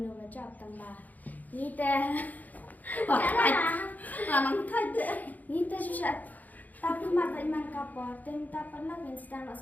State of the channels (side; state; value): right; late; 0.081 ms